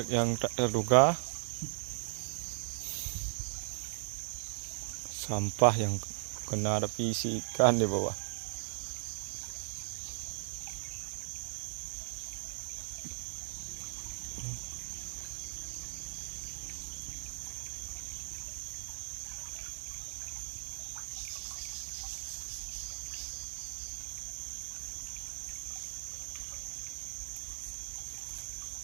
yang tak terduga. Sampah yang kena api isi ikan di bawah.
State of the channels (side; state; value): left; silent; digital silence